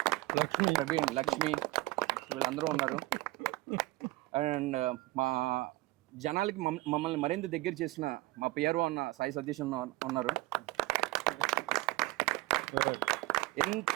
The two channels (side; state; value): left; quieter; 19.7 dB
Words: ప్రవీణ్, లక్ష్మి, వీళ్ళందరూ ఉన్నారు. అండ్ మా జనాలకి మమ్మల్ని మరింత దగ్గర చేసిన మా పిఆర్ఓ అన్న సాయి సతీష్ ఉన్నారు.